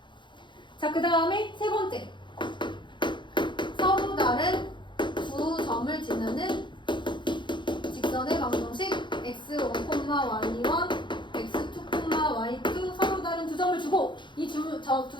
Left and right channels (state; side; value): late; right; 0.23 ms